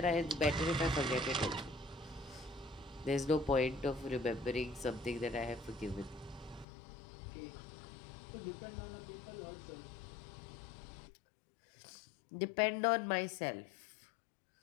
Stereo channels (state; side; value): drops out; right; at 6.7 s